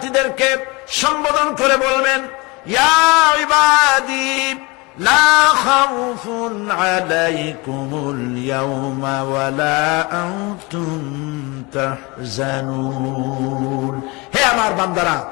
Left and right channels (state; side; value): quieter; right; 26.0 dB